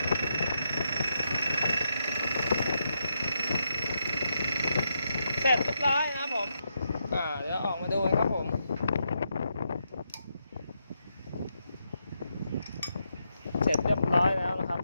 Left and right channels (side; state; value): both; inverted; correlation -0.82